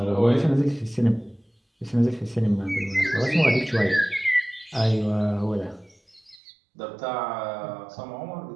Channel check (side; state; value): left; drops out; at 6.4 s